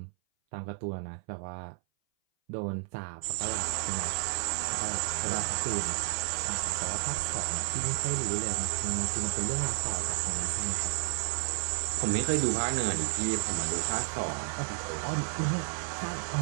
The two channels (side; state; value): left; silent; 57 dB below the other